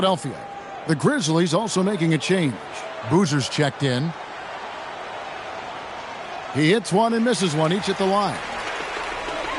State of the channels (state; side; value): identical; both; correlation 1.00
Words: The Grizzlies also making a change. Boozer's checked in. He hits one and misses one, each at the line.